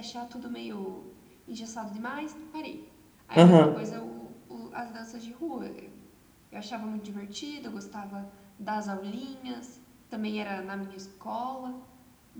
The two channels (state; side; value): identical; both; correlation 1.00